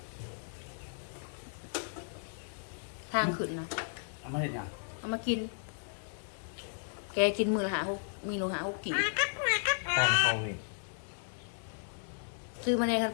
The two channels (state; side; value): silent; right; digital silence